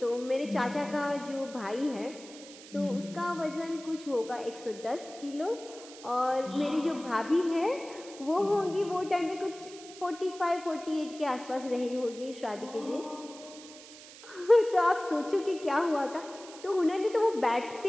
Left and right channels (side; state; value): right; noise; hiss, 17 dB below the sound